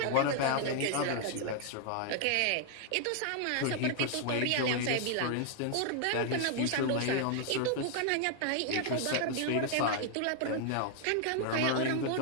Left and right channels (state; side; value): different; both; correlation 0.00